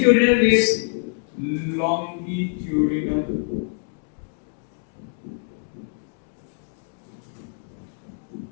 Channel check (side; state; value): right; silent; digital silence